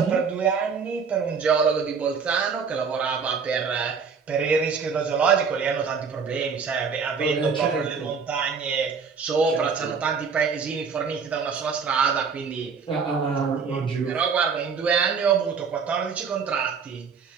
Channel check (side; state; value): left; quieter; 5.8 dB